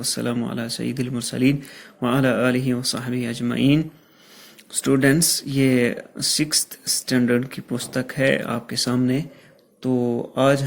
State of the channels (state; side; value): identical; both; correlation 1.00